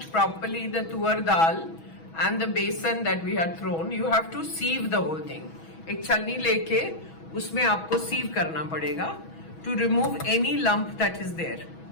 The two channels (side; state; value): right; late; 6.2 ms